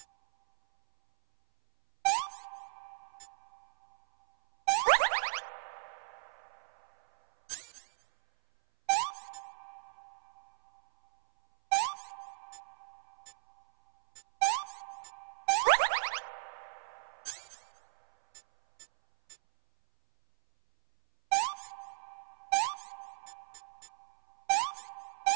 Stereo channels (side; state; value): left; silent; 54 dB below the other